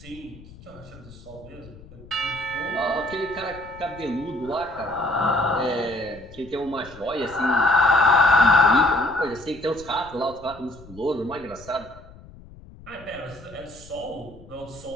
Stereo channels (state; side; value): noise; left; rumble, 20 dB below the sound